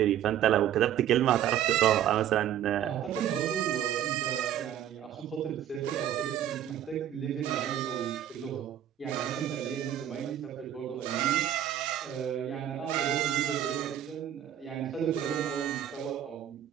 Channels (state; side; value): quieter; left; 10.8 dB